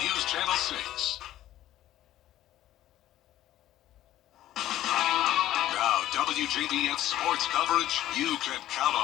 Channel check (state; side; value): quieter; right; 13.6 dB